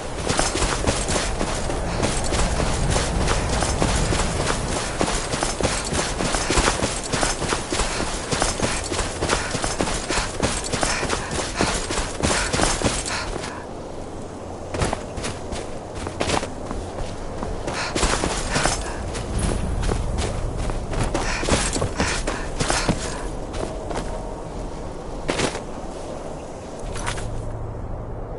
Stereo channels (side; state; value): both; identical; correlation 1.00